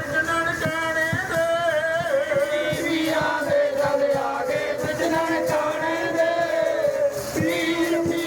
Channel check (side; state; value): both; identical; correlation 1.00